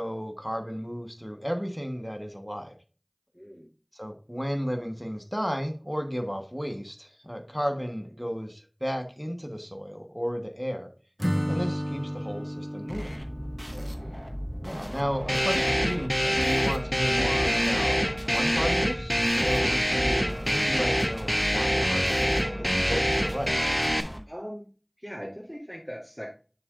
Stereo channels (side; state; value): both; identical; correlation 1.00